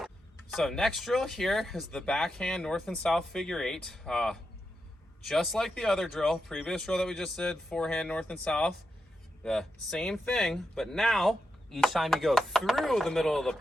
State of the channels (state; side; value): normal; both; correlation 0.87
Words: So next drill here is the backhand north and south figure eight. Just like the other drill, previous drill that we just did, forehand north and south, the same thing, but now each time you go through the middle of the